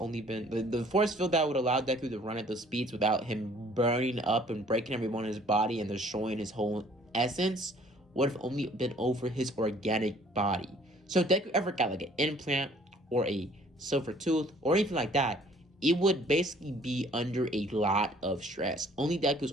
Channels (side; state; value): both; normal; correlation 0.57